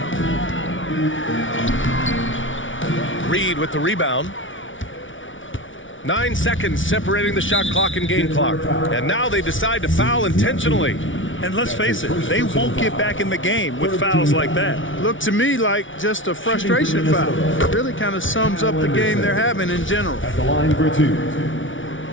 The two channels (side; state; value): right; late; 0.56 ms